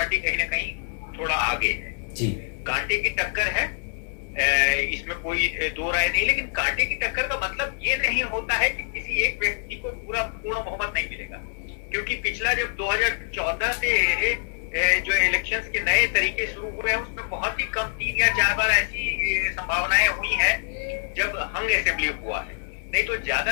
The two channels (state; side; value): silent; right; digital silence